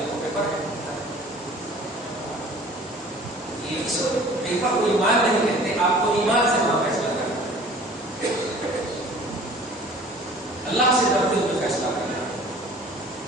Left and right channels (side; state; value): both; normal; correlation 0.48